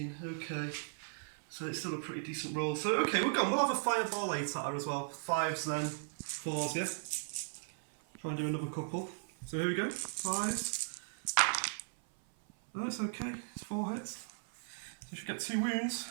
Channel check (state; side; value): silent; left; 53 dB below the other